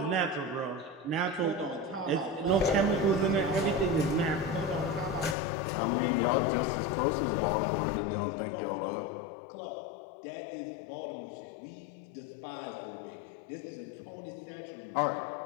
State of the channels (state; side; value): drops out; right; at 5.4 s